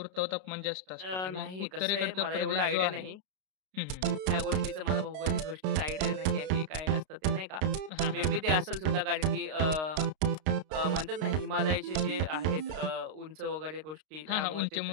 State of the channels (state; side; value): late; left; 32 ms